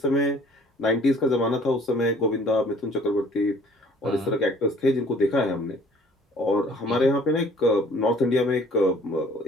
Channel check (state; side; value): normal; both; correlation 0.54